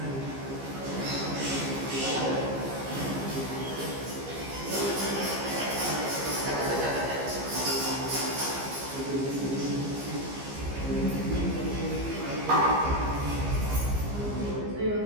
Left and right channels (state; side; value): late; left; 15 ms